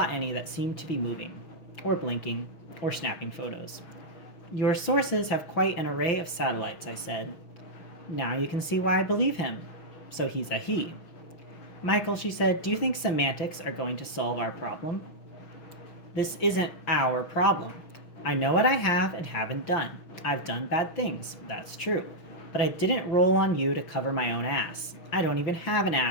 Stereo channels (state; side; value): late; right; 6.2 ms